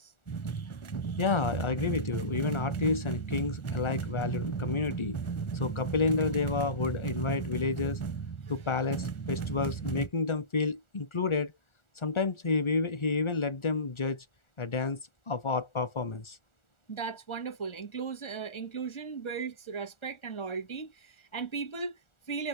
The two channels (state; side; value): late; right; 1.4 ms